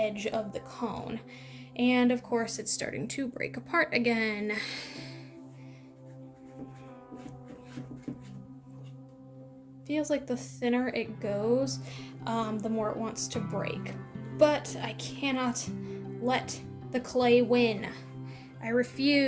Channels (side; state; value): both; identical; correlation 1.00